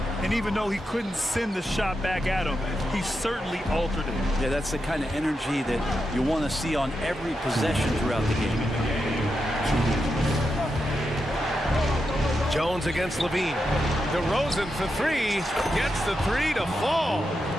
And even though he couldn't send the shot back at him, he certainly altered it. Yeah, that's the kind of energy that you want to see on every possession throughout the game. Jones against Levine. DeRozan for 3. Gets the 3 to fall.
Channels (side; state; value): both; normal; correlation 0.87